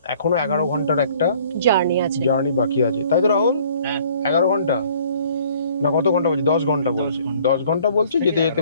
এখনো 11 ঘন্টার একটা জার্নি বাকি আছে, তাই তো রাহুল? 11 ঘন্টা না কত ঘন্টা বলছে? 10 ঘন্টা বলছে, 10 ঘন্টা বলছে। যেতে যেতে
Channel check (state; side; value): inverted; both; correlation -0.56